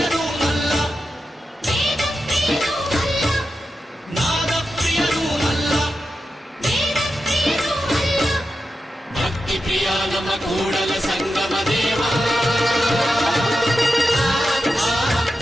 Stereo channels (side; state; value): both; normal; correlation 0.90